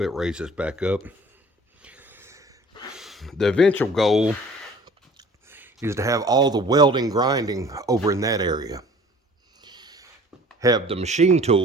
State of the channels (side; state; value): both; normal; correlation 0.49